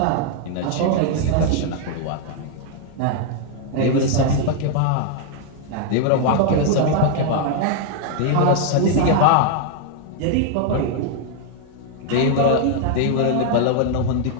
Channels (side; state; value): both; different; correlation 0.00